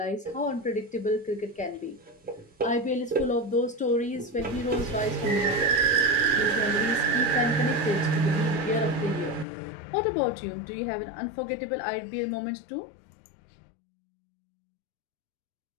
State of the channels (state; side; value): drops out; right; at 9.5 s